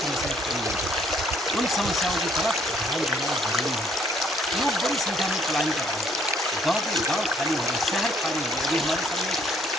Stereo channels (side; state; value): both; normal; correlation 0.64